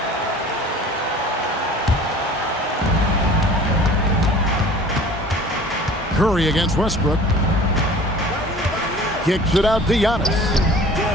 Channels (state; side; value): normal; both; correlation 0.45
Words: Curry against Westbrook. Kicks it out to Giannis.